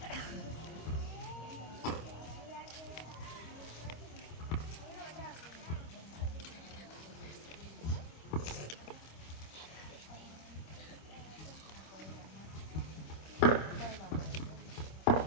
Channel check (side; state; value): right; late; 25 ms